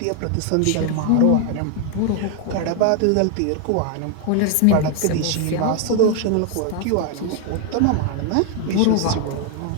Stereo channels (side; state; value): both; different; correlation 0.00